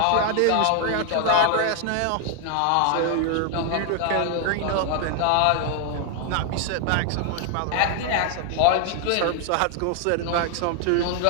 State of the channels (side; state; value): both; different; correlation 0.00